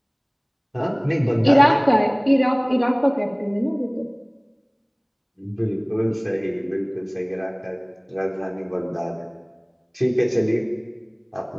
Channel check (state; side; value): identical; both; correlation 1.00